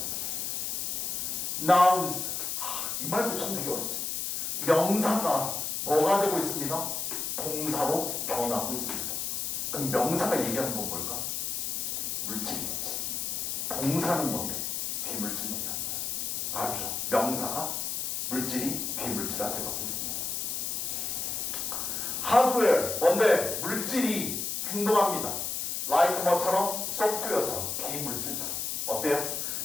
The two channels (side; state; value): left; noise; hiss, 2 dB below the sound